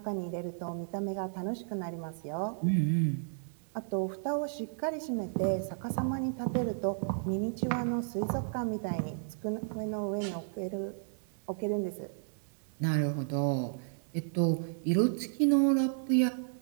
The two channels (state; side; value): silent; left; digital silence